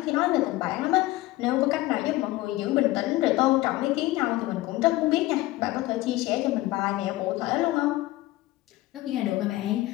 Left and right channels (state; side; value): quieter; right; 17.9 dB